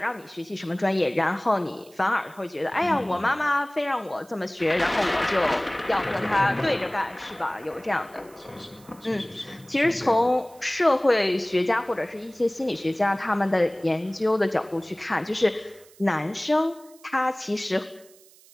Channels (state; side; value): noise; right; hiss, 26 dB below the sound